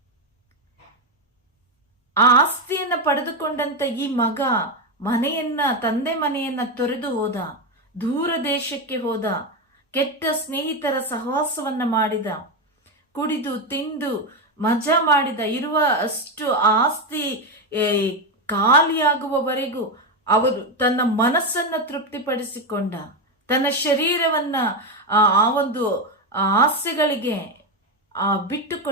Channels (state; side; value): normal; both; correlation 0.10